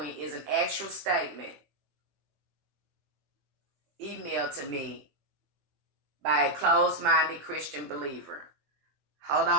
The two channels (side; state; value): left; late; 21 ms